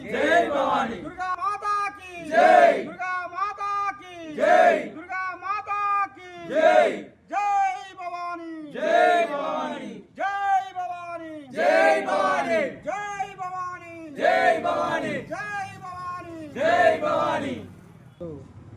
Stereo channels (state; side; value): identical; both; correlation 1.00